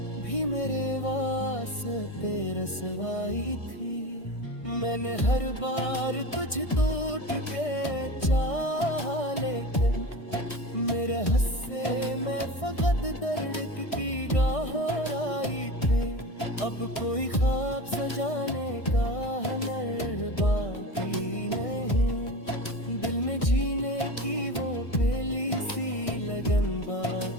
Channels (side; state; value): right; late; 1.6 ms